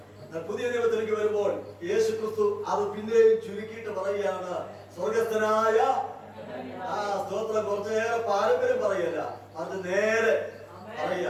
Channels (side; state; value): both; identical; correlation 1.00